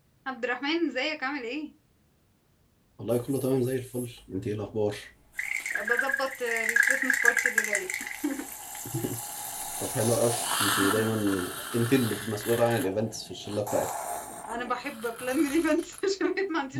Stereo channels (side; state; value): both; identical; correlation 1.00